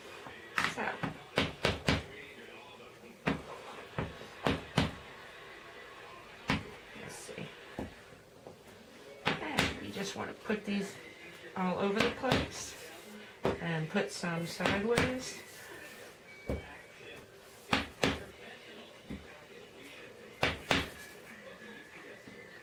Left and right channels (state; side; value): identical; both; correlation 1.00